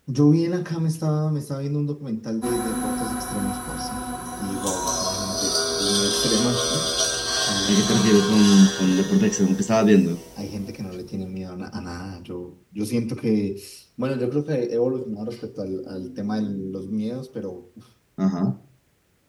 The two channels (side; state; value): both; identical; correlation 1.00